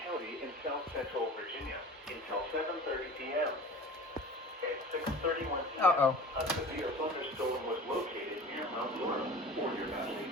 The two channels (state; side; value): normal; both; correlation 0.38